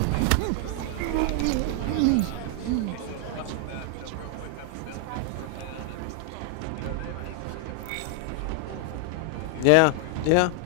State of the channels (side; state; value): both; different; correlation 0.00